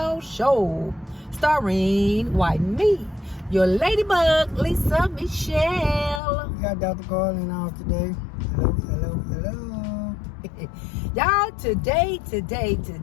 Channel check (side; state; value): right; drops out; at 6.2 s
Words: Show, starring me, your ladybug, Lisa Michelle. We got Dr. Karl in the house today. Hello, hello, hello. Y'all,